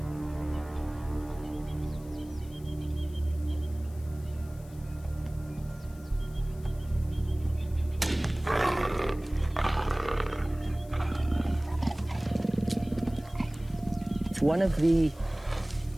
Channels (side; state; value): left; noise; hiss, 24 dB below the sound